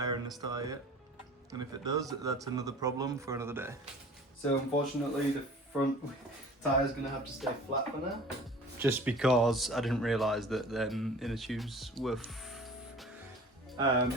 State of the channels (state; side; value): normal; both; correlation 0.44